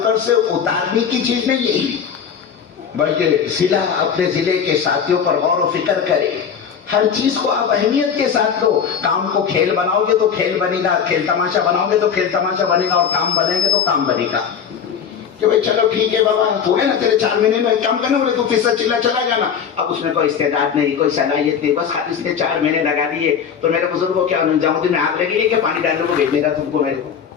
پر سے اتارنے کی چیز نہیں ہے, بلکہ ضلع اپنے ضلع کے ساتھیوں پر غور و فکر کرے. ہر چیز کو آپ اہمیت کے ساتھ لو. کام کو کھیل بناؤ گے تو کھیل بنے گا, کھیل تماشا بناؤ گے تو کھیل تماشا بنے گا, اور کام بنیں گے تو کام بنے گا. کہ بھائی چلو ٹھیک ہے بابا, ہو گیا نا تیرے 4 مہینے میں کام کرنے والے, تو فیصد چلا چلا جانا. اب اس میں کوئی استعداد نہیں, کوئی صلاحیت نہیں, بس اس نے 4 مہینے لگا دیے. تو میرے بزرگوں کیا نظام الدین میں آگ لگی ہے کہ پانی ڈالنے کو بھیجنے کا تم کو میرے کو.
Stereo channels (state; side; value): quieter; right; 7.4 dB